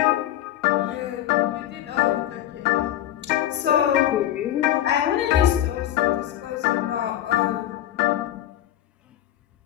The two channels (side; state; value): right; quieter; 12.5 dB